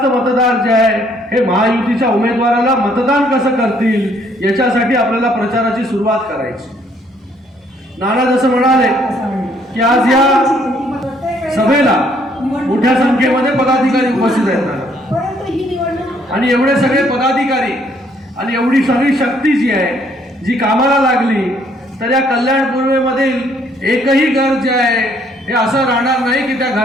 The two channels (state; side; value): normal; both; correlation 0.66